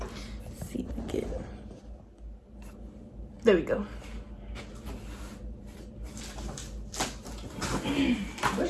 see if I can. There we go. I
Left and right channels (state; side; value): identical; both; correlation 1.00